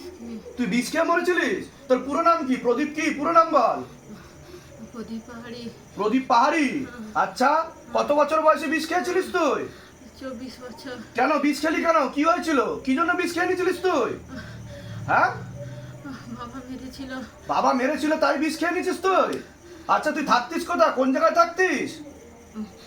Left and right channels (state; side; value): identical; both; correlation 1.00